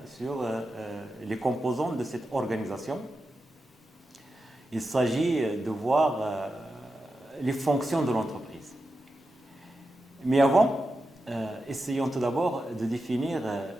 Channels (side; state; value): both; normal; correlation 0.90